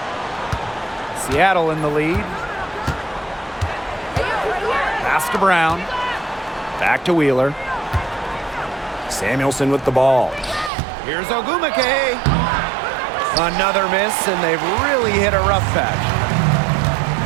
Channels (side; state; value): left; drops out; at 10.7 s